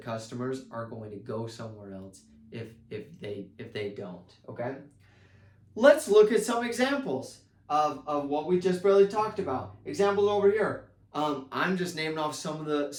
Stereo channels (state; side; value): identical; both; correlation 1.00